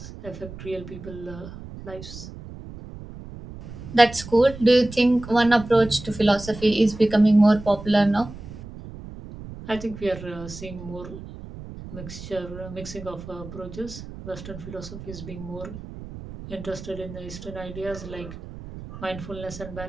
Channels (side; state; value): right; noise; rumble, 13 dB below the sound